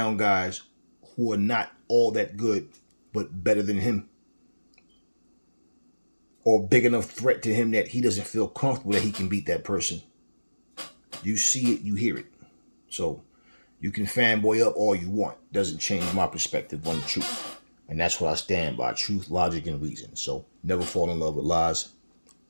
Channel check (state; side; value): inverted; both; correlation -1.00